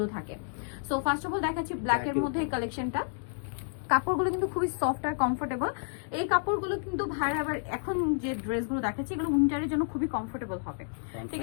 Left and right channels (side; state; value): right; silent; digital silence